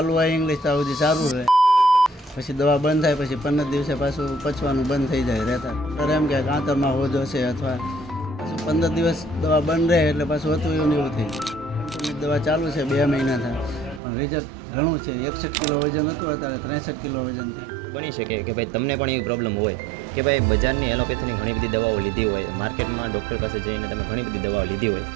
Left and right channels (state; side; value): drops out; left; at 14.0 s